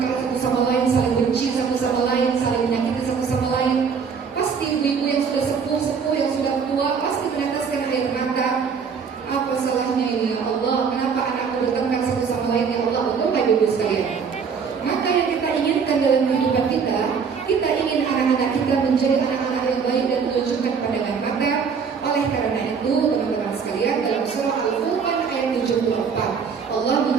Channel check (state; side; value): quieter; left; 6.1 dB